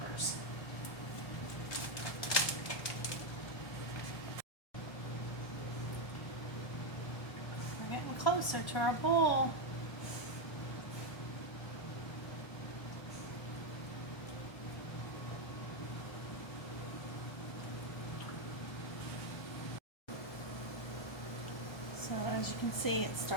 We're getting closer to our bowl. As you can see, it's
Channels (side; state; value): right; late; 1.3 ms